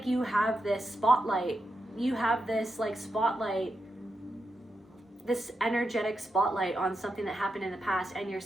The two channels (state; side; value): normal; both; correlation 0.86